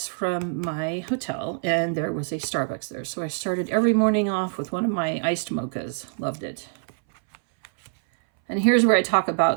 from my hotel, and there was a Starbucks there. So I started every morning off with one of my iced mochas. Loved it. And here's where I talk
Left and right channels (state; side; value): silent; left; 61 dB below the other